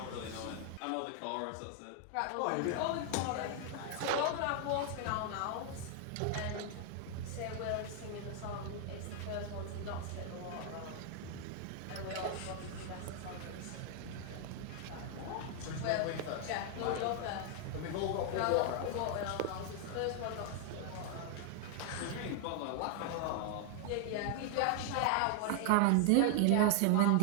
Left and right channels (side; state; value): both; different; correlation 0.00